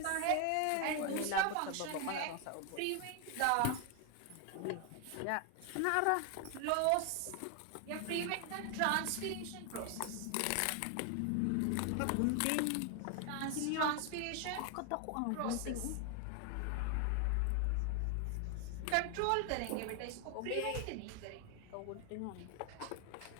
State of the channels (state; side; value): different; both; correlation 0.01